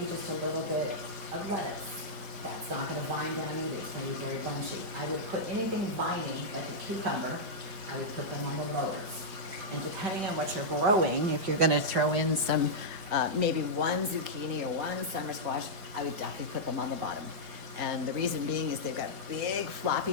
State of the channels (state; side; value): late; left; 4.8 ms